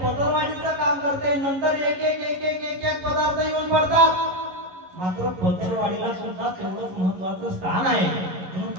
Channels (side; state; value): left; late; 11 ms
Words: पदरवाढीचं काम करते. नंतर एक एक एक एक एक एक पदार्थ येऊन पडतात. मात्र पदरवाढीला सुद्धा तेवढंच महत्वाचं स्थान आहे. म्हणून